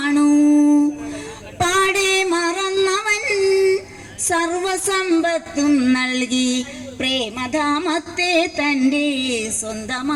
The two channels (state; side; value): identical; both; correlation 1.00